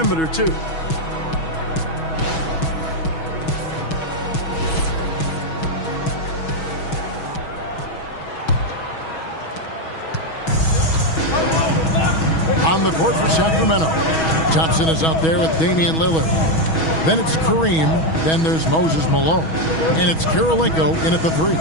too. On the court for Sacramento. Thompson is out there with Damian Lillard. Then it's Kareem. Then there's Moses Malone. And it's Kirilenko in at the three.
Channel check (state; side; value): late; right; 6.2 ms